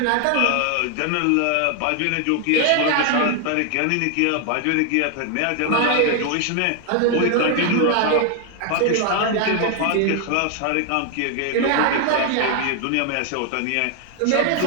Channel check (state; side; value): different; both; correlation 0.00